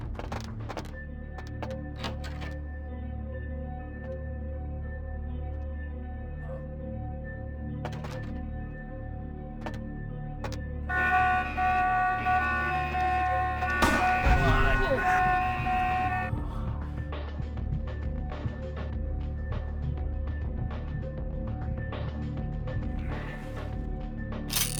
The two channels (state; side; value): identical; both; correlation 1.00